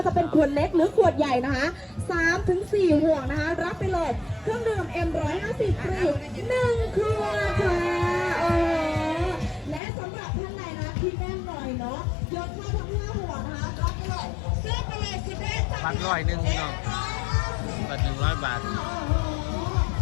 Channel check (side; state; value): right; drops out; at 9.8 s